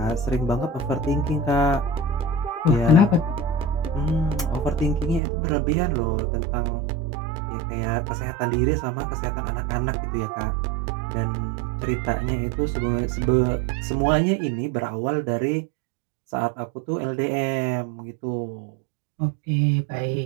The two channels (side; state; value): left; drops out; at 5.2 s